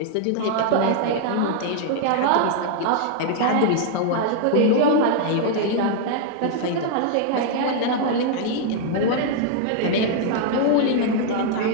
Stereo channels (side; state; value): both; different; correlation 0.00